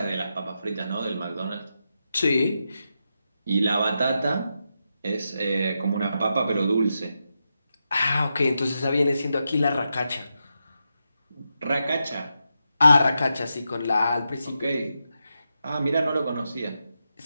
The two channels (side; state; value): both; inverted; correlation -0.87